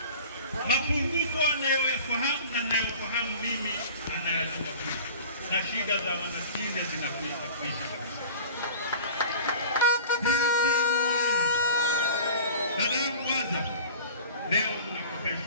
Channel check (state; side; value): inverted; both; correlation -0.39